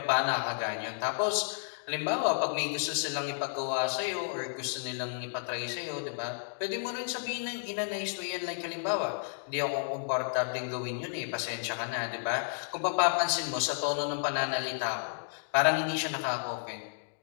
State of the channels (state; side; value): silent; right; digital silence